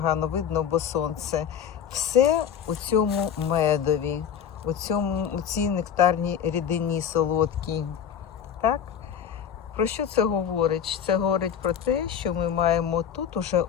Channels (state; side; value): quieter; right; 8.4 dB